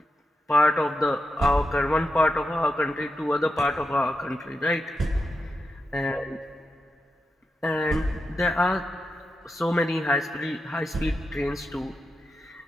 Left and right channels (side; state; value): both; normal; correlation 0.88